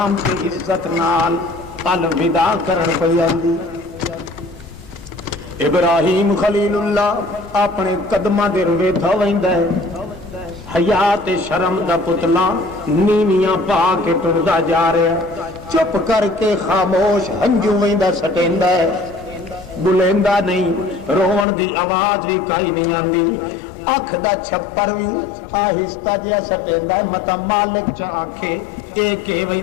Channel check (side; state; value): right; drops out; at 21.5 s